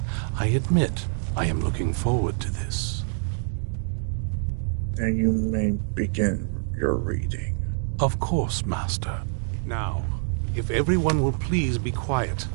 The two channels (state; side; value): silent; left; digital silence